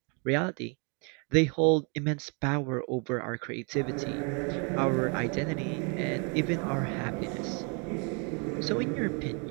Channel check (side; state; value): left; quieter; 35.6 dB